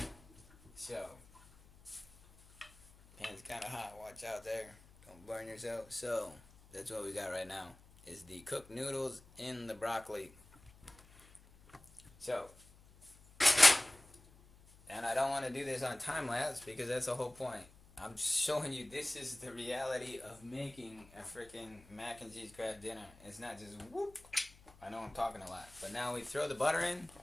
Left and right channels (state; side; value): noise; left; hum, 24 dB below the sound